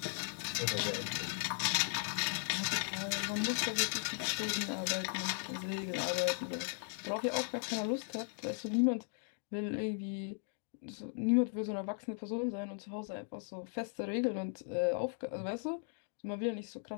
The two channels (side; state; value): right; silent; 53 dB below the other